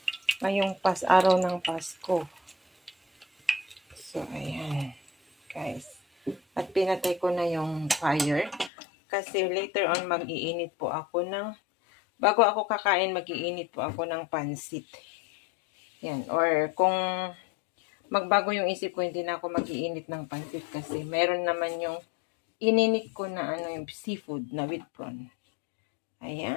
ngayong araw ng Pasko. So, ayan, guys. At pinatay ko na yung fire. Kasi later on, mag-iinit po ako bago ako kakain, mag-iinit po ako ng pansit. Yan. Or kung magbago yung isip ko, hindi na ako mag-iinit ng pansit kasi meron naman yung ininit ko na ano, yung seafood na with prawn.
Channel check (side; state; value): right; drops out; at 8.7 s